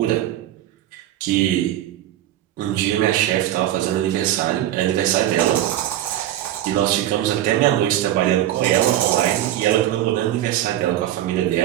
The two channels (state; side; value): quieter; left; 13.0 dB